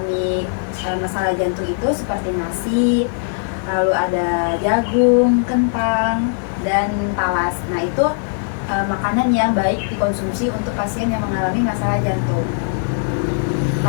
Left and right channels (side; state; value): right; silent; 66 dB below the other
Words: masalah jantung itu seperti nasi, lalu ada jagung, kentang, dan talas. Nah, itu makanan yang baik dikonsumsi untuk pasien yang mengalami masalah jantung.